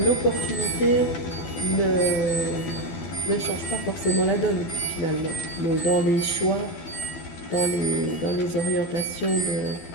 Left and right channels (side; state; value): right; late; 12 ms